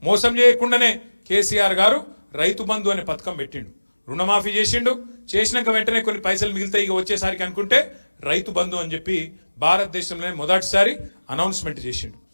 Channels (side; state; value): both; inverted; correlation -1.00